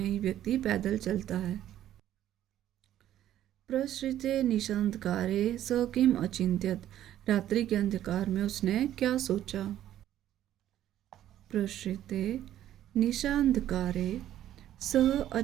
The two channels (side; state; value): left; quieter; 12.1 dB